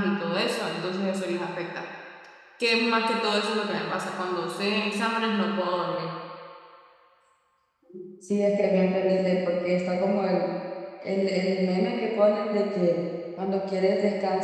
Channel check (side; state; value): both; identical; correlation 1.00